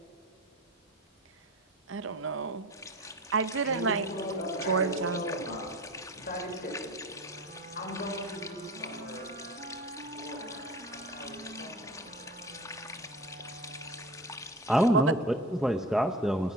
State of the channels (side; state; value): both; normal; correlation 0.34